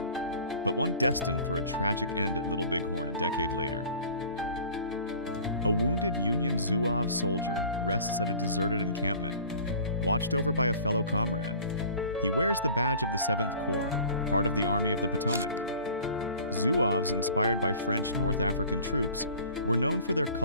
but one destined for a tragic end at Little Bighorn a decade later. A wounded Union Zouave soldier rests at a deserted encampment, watched over by a fellow comrade. He wears the badge of the 7th Corps, part of the Army of the Potomac. Zouaves, inspired by French North African troops, were known for their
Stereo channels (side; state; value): both; inverted; correlation -0.46